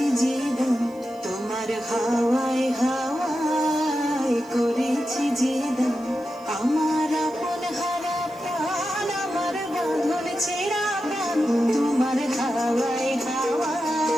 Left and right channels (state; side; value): noise; right; hiss, 28 dB below the sound